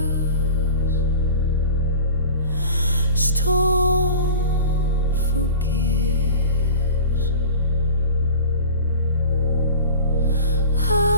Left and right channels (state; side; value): inverted; both; correlation -0.38